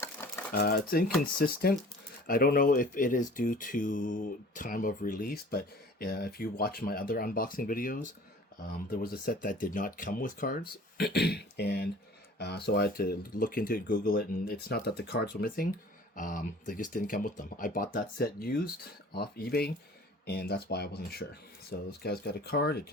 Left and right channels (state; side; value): normal; both; correlation 0.47